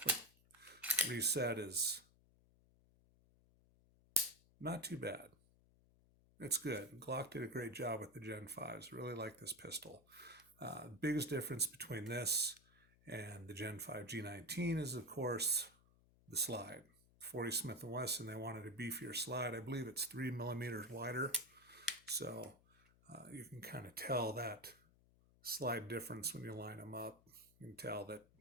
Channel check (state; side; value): noise; left; hum, 28 dB below the sound